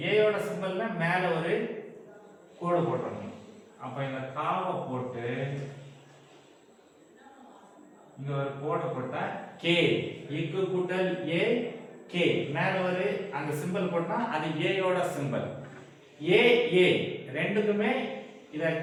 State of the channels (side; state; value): both; identical; correlation 1.00